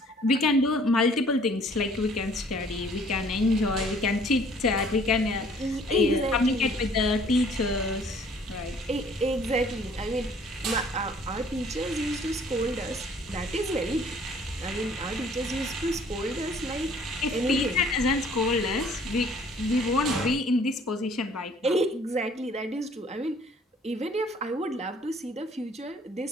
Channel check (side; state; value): both; normal; correlation 0.57